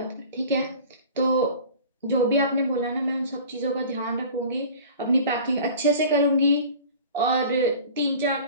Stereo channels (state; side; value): inverted; both; correlation -0.42